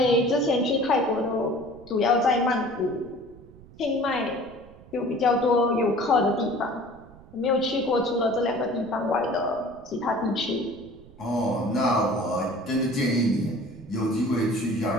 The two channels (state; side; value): noise; right; rumble, 21 dB below the sound